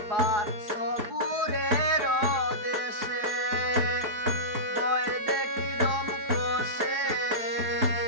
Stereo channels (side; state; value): left; late; 4.8 ms